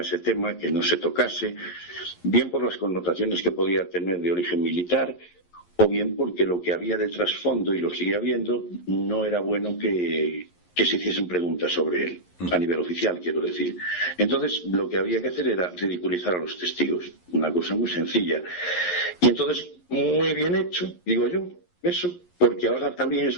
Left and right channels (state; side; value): late; right; 11 ms